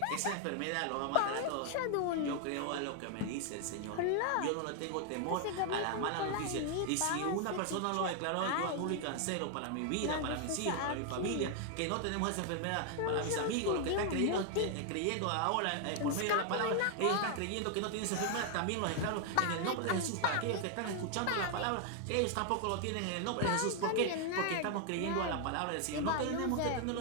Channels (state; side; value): different; both; correlation 0.00